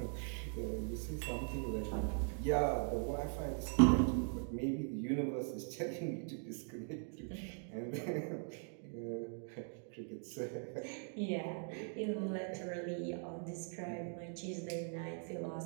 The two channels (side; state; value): left; silent; 51 dB below the other